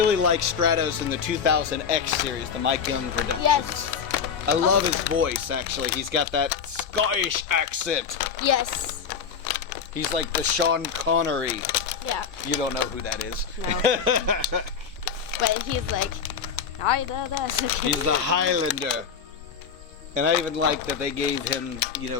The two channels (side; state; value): right; quieter; 6.7 dB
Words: like Stratos in the 2000X series, the Mike Young Productions. Yes. I love his voice, actually. He's got that Scottish accent. Yes. He's like the Sean Connery. Yeah. You don't know who that is. No. But he's like, He's the Highlander. And I even like that they gave him, you know,